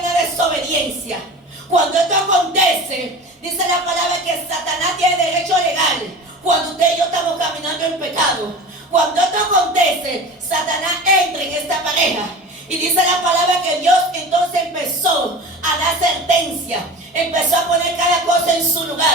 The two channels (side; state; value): both; normal; correlation 0.35